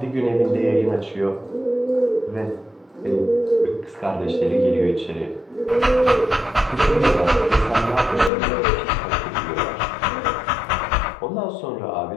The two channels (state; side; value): drops out; right; at 8.3 s